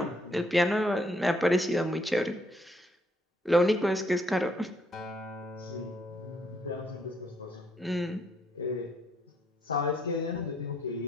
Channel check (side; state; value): both; normal; correlation 0.70